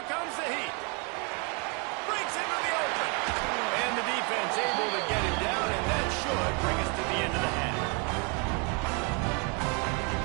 comes the heat. Breaks into the open. And the defense able to get him down, and that should bring us to the end of the half.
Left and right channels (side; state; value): left; quieter; 33.2 dB